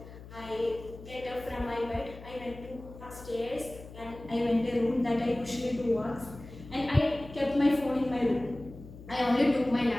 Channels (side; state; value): left; noise; hum, 16 dB below the sound